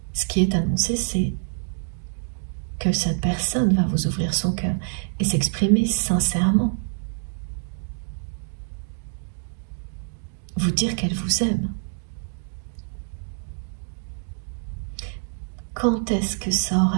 ce qui est annoncé, c'est que cette personne va vous ouvrir son cœur et s'exprimer sincèrement. Vous dire qu'elle vous aime. Quand est-ce que ça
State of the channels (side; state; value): left; silent; 59 dB below the other